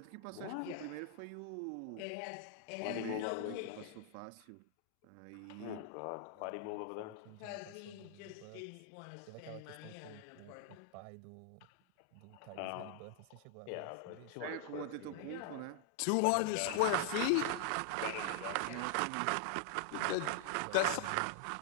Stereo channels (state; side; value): different; both; correlation -0.01